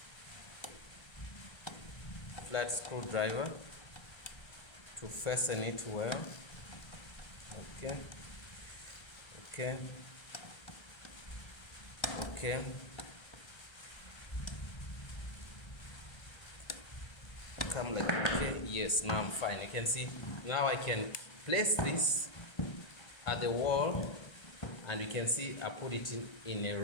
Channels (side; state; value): right; late; 1.3 ms